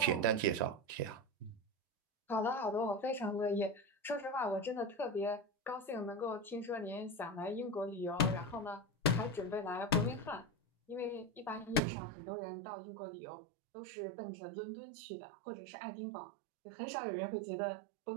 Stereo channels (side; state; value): left; drops out; at 11.8 s